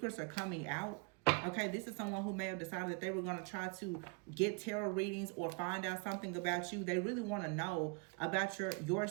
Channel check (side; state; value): left; quieter; 33.3 dB